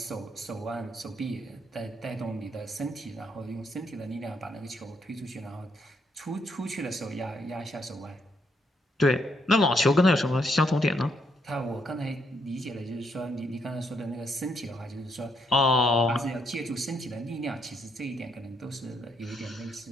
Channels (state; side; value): normal; both; correlation 0.74